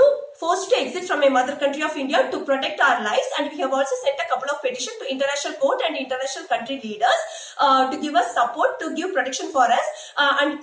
forced to exit from my mother country of India to protect our lives, and we have also sent a couple of petitions to international court and international country leaders to give us support, to give protection for us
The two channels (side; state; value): both; identical; correlation 1.00